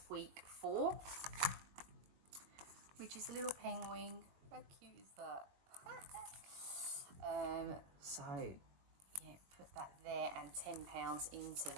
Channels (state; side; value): late; left; 21 ms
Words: week 4, which is a little penguin. How cute is that? So yeah, put that there and £10 into